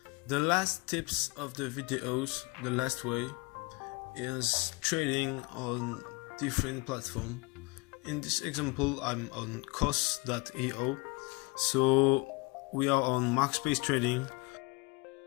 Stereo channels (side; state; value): right; quieter; 26.9 dB